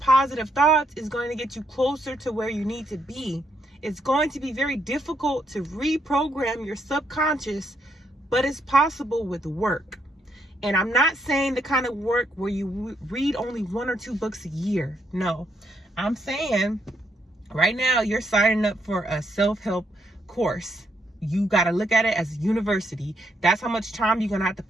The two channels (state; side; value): normal; both; correlation 0.76